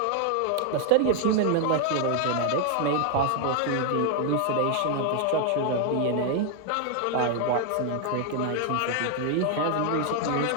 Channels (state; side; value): different; both; correlation 0.00